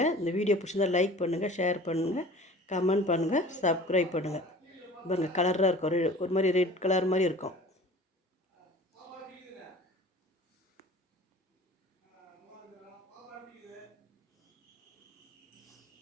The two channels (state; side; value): normal; both; correlation 0.44